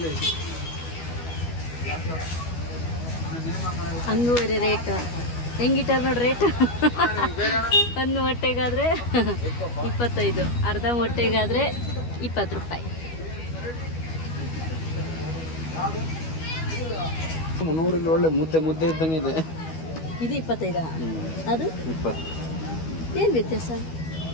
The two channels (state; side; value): late; right; 12 ms